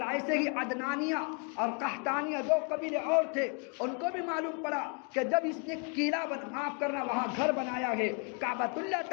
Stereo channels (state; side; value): quieter; right; 34.7 dB